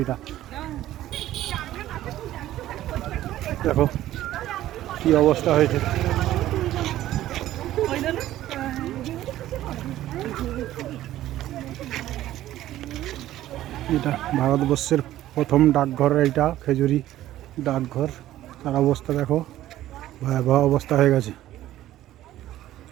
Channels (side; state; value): left; quieter; 13.9 dB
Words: এইটা। দেখো কি অবস্থা হয়েছে। এটা ভারতবর্ষের প্রথম ডাকঘর, এইটা খেজুরি ডাকঘর। তার অবস্থা দেখো, ভয়াবহ অবস্থা হয়ে গেছে,